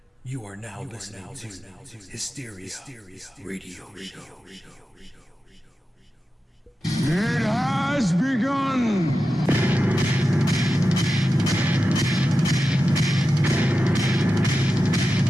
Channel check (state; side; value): normal; both; correlation 0.92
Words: You are now listening to Hysteria Radio Show. It has begun!